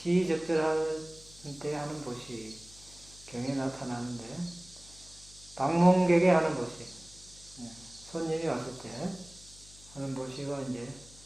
때 하는 보시, 경에 나타나는데, 방문객에 하는 보시, 손님이 왔을 때 하는 보시가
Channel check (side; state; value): left; noise; hum, 22 dB below the sound